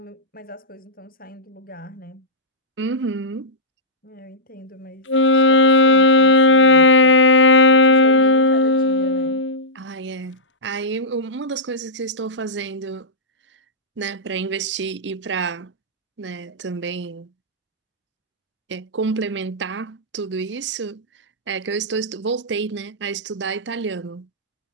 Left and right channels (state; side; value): normal; both; correlation -0.12